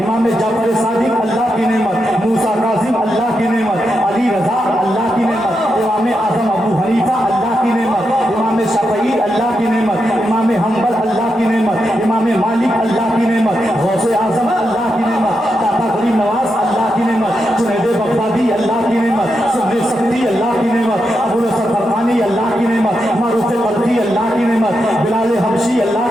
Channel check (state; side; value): normal; both; correlation 0.85